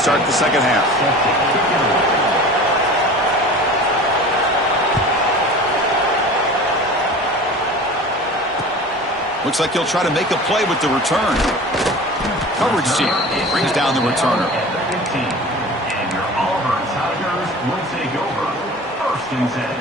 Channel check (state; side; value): normal; both; correlation 0.38